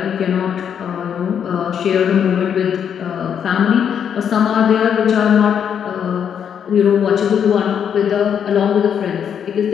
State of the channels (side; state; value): right; quieter; 8.2 dB